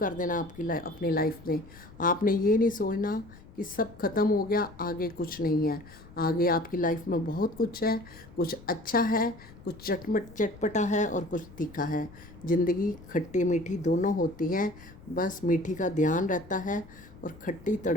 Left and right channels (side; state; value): left; noise; rumble, 20 dB below the sound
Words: देना अपनी लाइफ में। आपने ये नहीं सोचना कि सब ख़त्म हो गया, आगे कुछ नहीं है। आगे आपकी लाइफ में बहुत कुछ है, कुछ अच्छा है, कुछ चटपटा है और कुछ तीखा है। ज़िंदगी खट्टी मीठी दोनों होती है, बस मीठी का ध्यान रहता है और खट्टी